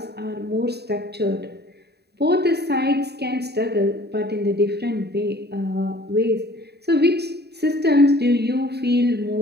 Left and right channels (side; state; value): left; late; 0.48 ms